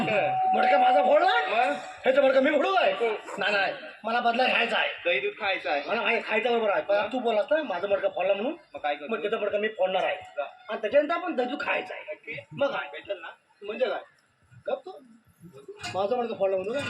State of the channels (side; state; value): both; identical; correlation 1.00